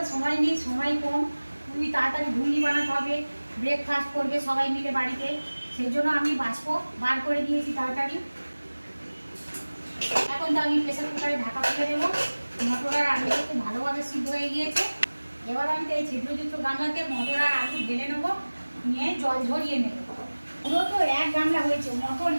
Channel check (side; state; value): both; inverted; correlation -1.00